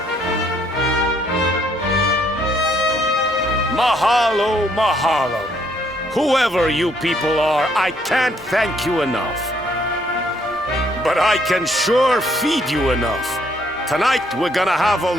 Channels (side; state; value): both; normal; correlation 0.68